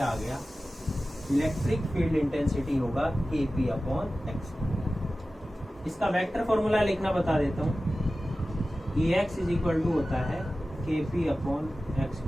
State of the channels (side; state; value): both; normal; correlation 0.95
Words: आ गया, इलेक्ट्रिक फील्ड इंटेंसिटी होगा kp अपॉन एक्स। इसका वेक्टर फॉर्मूला लिखना बता देता हूँ। Ex इज इक्वल टू होता है kp अपॉन एक्स